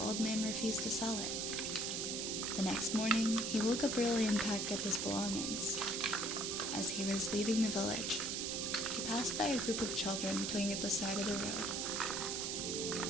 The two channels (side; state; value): right; noise; hiss, 1 dB below the sound